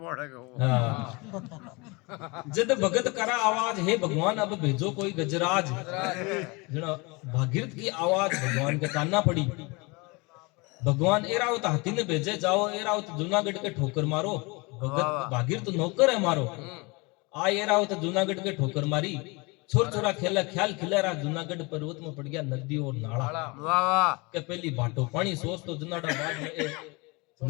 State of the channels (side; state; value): right; quieter; 27.0 dB